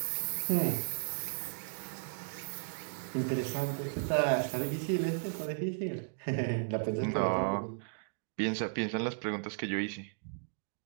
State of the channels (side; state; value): left; silent; digital silence